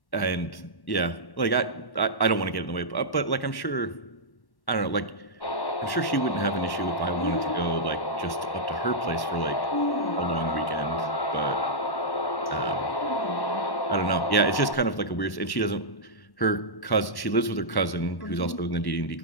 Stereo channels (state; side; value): late; right; 1.1 ms